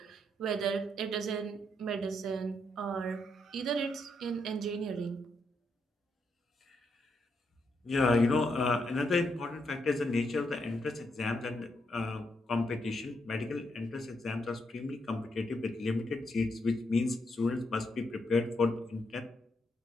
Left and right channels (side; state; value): both; normal; correlation 0.79